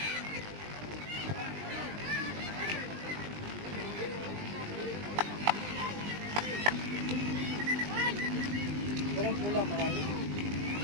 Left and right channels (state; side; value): late; left; 20 ms